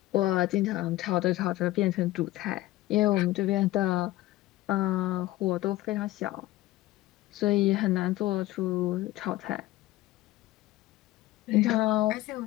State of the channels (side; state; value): right; quieter; 16.8 dB